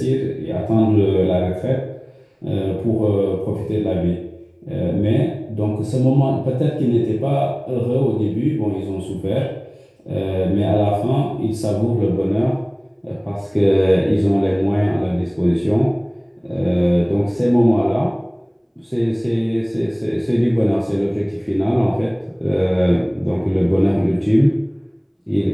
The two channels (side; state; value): both; identical; correlation 1.00